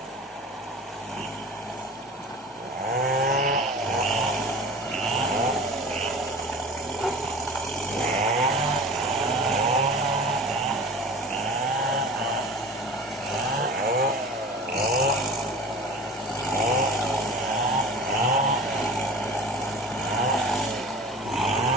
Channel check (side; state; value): both; normal; correlation 0.38